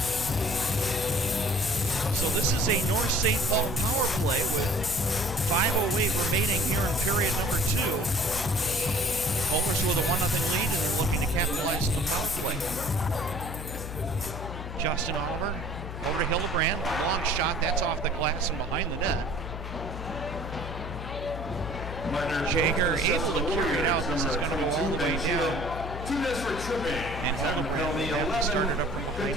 So this is a North St. Paul power play with 5:08 remaining here in period number 2. Polars with a 1-0 lead, and they're looking to capitalize on the power play. Justin Oliver over to Hildebrand. Long shot, that's off the glass and behind the net. Jaeger able to carry it out. This is going to go all the way down. And Hildebrand will have to start it up from behind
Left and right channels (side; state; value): left; noise; hum, 8 dB below the sound